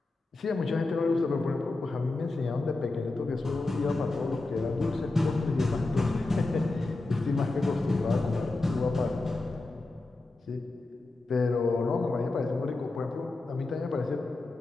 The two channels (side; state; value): right; quieter; 3.1 dB